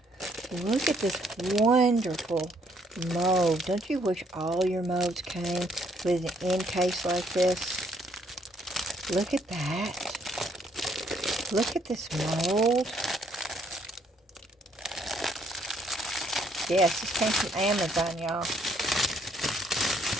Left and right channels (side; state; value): both; normal; correlation 0.68